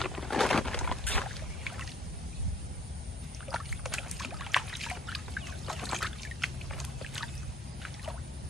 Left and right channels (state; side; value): normal; both; correlation 0.56